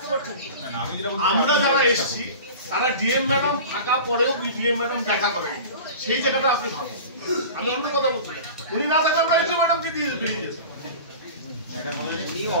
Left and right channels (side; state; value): both; inverted; correlation -0.36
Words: পারছেন? আমরা যারা এসেছি তারা ডিএম ম্যাডাম থাকা পরেও ডিএম ম্যাডাম দেখা করেন, সেই জায়গাটা আপনি ভাবুন। আমি অন্য কথা বলছি, উনি না থাকলে আমরা ডিএম ম্যাডামকে দিয়ে বেরিয়ে যেতাম,